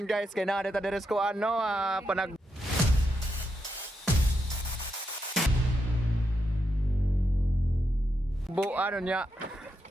guys, kay na dito deres ko ano, panag ano niya.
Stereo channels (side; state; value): both; normal; correlation 0.83